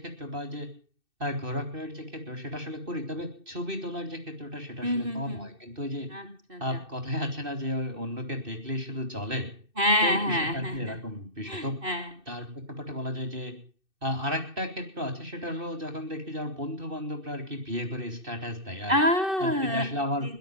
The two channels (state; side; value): late; left; 2.6 ms